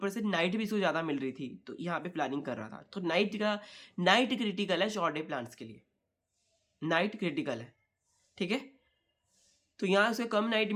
से नाइट भी इसको ज़्यादा मिल रही थी, तो यहाँ पे फ्लावरिंग कर रहा था। तो नाइट क्रिटिकल है शॉर्ट डे प्लांट्स के लिए, नाइट क्रिटिकल है, ठीक है। तो यहाँ उसे कम नाइट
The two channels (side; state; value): both; identical; correlation 1.00